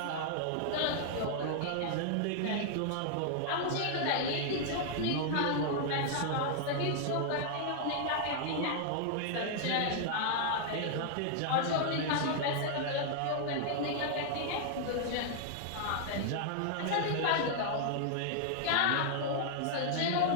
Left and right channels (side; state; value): both; different; correlation -0.01